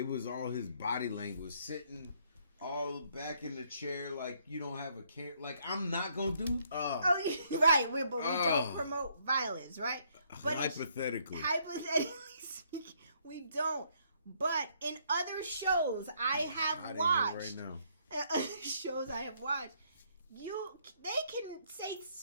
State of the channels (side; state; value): both; inverted; correlation -0.69